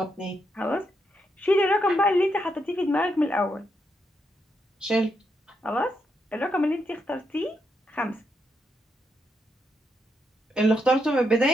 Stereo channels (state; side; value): normal; both; correlation 0.80